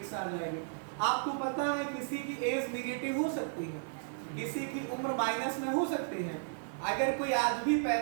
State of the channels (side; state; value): left; silent; 55 dB below the other